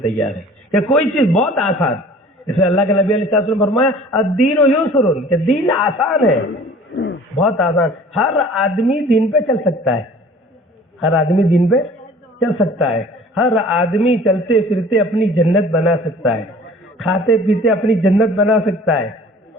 تیاری کہ کوئی چیز بہت آسان. اس میں اللہ کے نبی علیہ السلام نے فرمایا الدین یسر کہ دین آسان ہے, بہت آسان. ہر آدمی دین پہ چل سکتا ہے, ہر آدمی دین پہ چل سکتا ہے, ہر آدمی چلتے پھرتے اپنی جنت بنا سکتا ہے, کھاتے پیتے اپنی جنت بنا سکتا ہے.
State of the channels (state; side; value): normal; both; correlation 0.47